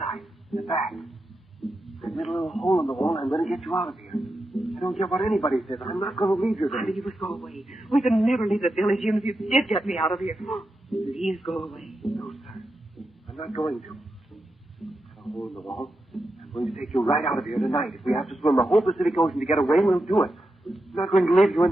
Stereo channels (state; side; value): normal; both; correlation 0.88